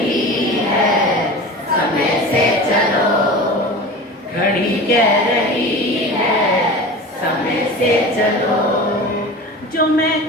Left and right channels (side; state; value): both; normal; correlation 0.34